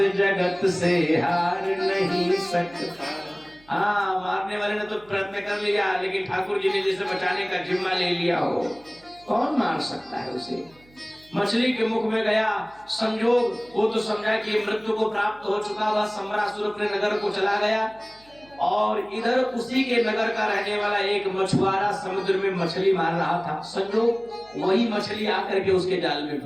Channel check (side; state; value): right; noise; hum, 28 dB below the sound